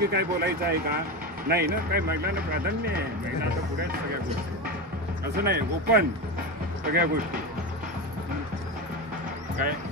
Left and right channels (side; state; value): both; normal; correlation 0.19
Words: काय बोलायचं आहे का? नाही ना, काय महिलांना प्राधान्य आहे, महिला आता पुढे आहेत सगळ्या गोष्टी, असं नाही, ओपन सगळ्या गोष्टी. काय